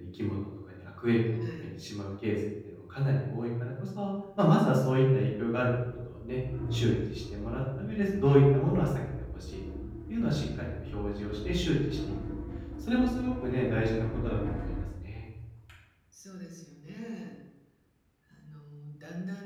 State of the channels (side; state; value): both; identical; correlation 1.00